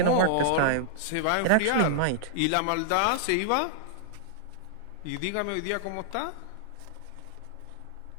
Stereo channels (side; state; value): both; different; correlation -0.01